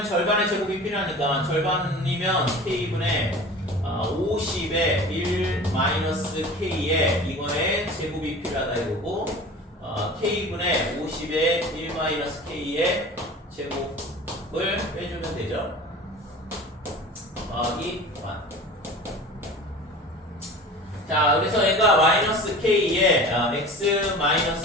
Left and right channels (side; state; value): both; normal; correlation 0.38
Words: 절반의 제곱이 필요하니까 절반이면 k분의 50에 1 마이너스 k에 이거의 제곱이 필요하다 이거고 k분의 50에 1 마이너스 k의 제곱을 빼주면 되죠. 더하기 1. 자 그래서 얘가 마이너스 k에 x